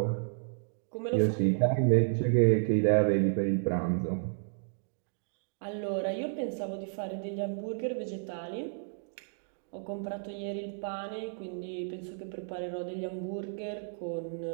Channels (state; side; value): silent; left; digital silence